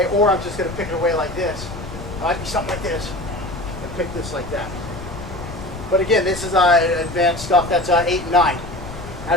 or I'm just going to pick it away like this. It might be something like this, and pick this like that. But again, this is advanced stuff. That's 8 and 9. How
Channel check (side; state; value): left; noise; rumble, 12 dB below the sound